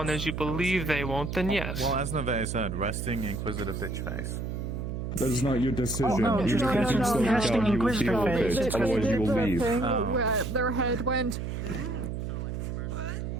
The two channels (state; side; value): noise; right; hum, 4 dB below the sound